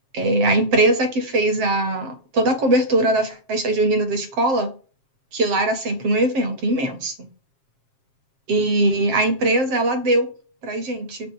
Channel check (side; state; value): left; late; 7.4 ms